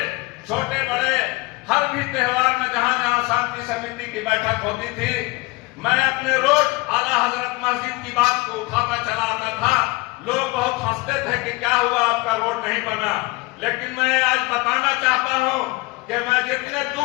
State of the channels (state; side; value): quieter; right; 23.6 dB